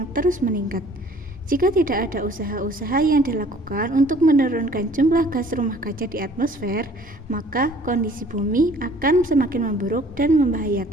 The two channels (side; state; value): both; normal; correlation 0.54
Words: terus meningkat. Jika tidak ada usaha-usaha yang dilakukan untuk menurunkan jumlah gas rumah kaca di atmosfer, maka kondisi bumi akan semakin memburuk dan